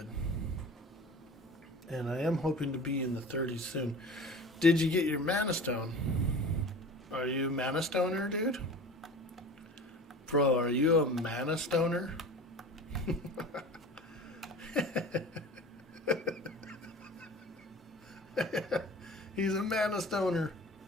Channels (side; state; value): both; normal; correlation 0.38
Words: And I am hoping to be in the 30s soon. Did you get your mana stone? Are you a mana stoner, dude? Bro, are you a mana stoner? He's a mana stoner.